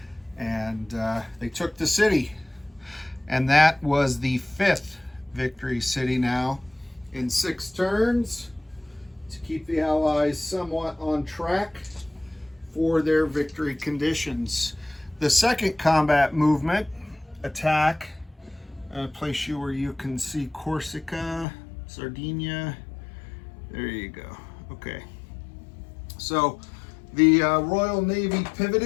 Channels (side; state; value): right; drops out; at 21.5 s